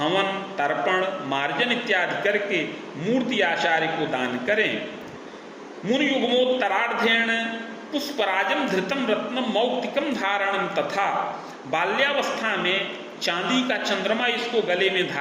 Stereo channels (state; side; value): identical; both; correlation 1.00